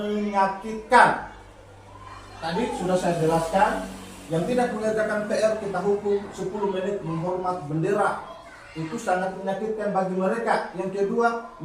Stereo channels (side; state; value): both; identical; correlation 1.00